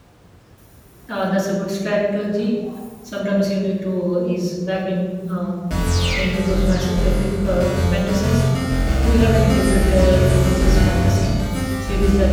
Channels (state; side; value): identical; both; correlation 1.00